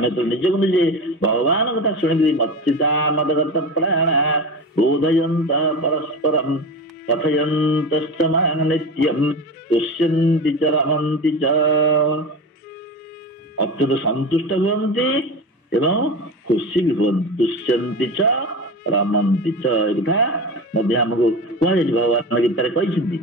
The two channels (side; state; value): both; normal; correlation 0.27